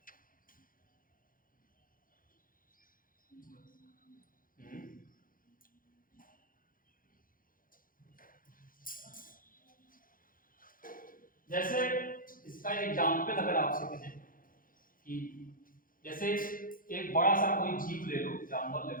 जैसे इसका एग्जांपल अगर आपसे कहें कि जैसे एक बड़ा सा कोई जीव ले लो, जानवर ले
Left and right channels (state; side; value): late; right; 0.40 ms